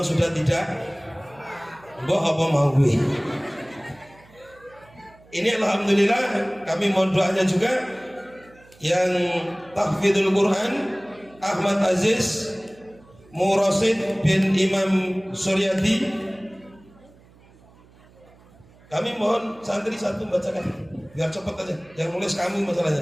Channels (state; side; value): noise; right; hum, 27 dB below the sound